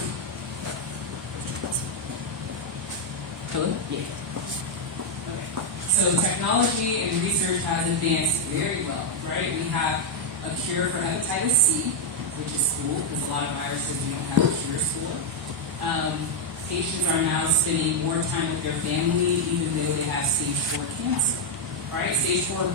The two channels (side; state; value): both; normal; correlation 0.00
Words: Hello? Yeah. Okay. So technology and research has advanced very well, right? We have a cure for hepatitis C, which is cool because a lot of viruses we don't have cures for. Patients are now spending more time with their family even though they have stage 4 cancer, right? Stage 4